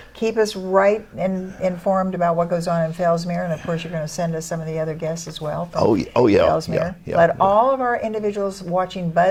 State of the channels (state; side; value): identical; both; correlation 1.00